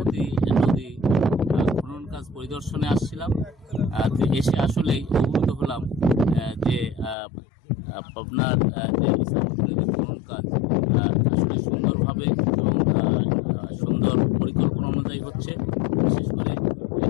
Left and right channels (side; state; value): right; drops out; at 7.2 s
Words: নদী খনন কাজ পরিদর্শনে আসছিলাম। এসে আসলেই অবগত হলাম যে পাবনার যে ইছামতি নদী খনন কাজ আসলে সুন্দরভাবে এবং সুন্দর পরিকল্পনা অনুযায়ী হচ্ছে। বিশেষ করে